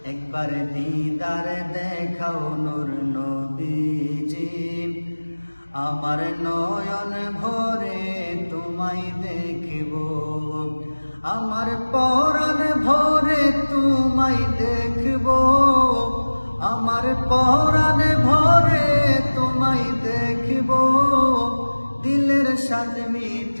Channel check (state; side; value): inverted; both; correlation -1.00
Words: একবার দিদার দেখাও নূর নবীজি, আমার নয়ন ভরে তোমায় দেখব। আমার পরাণ ভরে তোমায় দেখব, আমার পরাণ ভরে তোমায় দেখব। দিলের স্বাদ